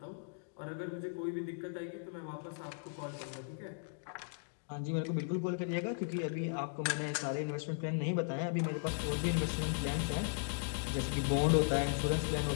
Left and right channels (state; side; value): silent; right; digital silence